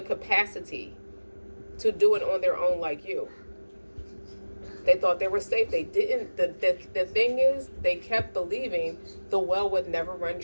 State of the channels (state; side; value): inverted; both; correlation -1.00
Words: capacity to do it on their own like you. They thought they were safe. They didn't. The thing is, they kept believing the well would never run